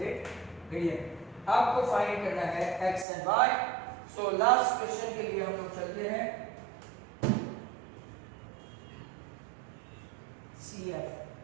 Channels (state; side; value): drops out; left; at 3.1 s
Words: मीडियन आपको फाइंड करना है x and y. So last question के लिए हम लोग चलते हैं. CF